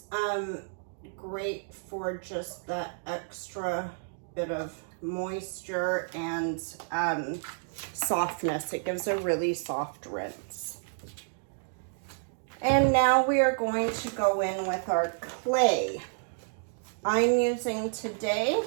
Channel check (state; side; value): silent; left; digital silence